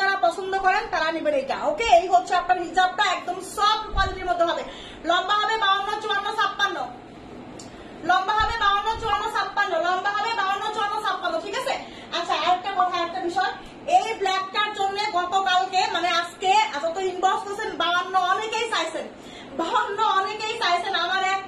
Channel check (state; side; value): identical; both; correlation 1.00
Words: যারা পছন্দ করেন তারা নেবেন এটা, ওকে? এই হচ্ছে আপনার হিজাবটা একদম সফট কোয়ালিটির মধ্যে হবে, লম্বা হবে 52, 54, 56, লম্বা হবে 52, 54, 56, লম্বা হবে 52, 54, 56, ঠিক আছে? আচ্ছা আরেকটা কথা, একটা বিষয়, এই ব্ল্যাকটার জন্য গতকালকে মানে আজকে এত ইনবক্স করছেন 52, অনেকেই চাইছেন 52, অনেকেই চাইছেন, আমার এক